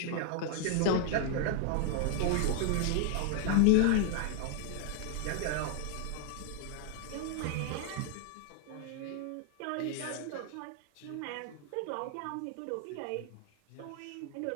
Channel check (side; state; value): both; different; correlation 0.00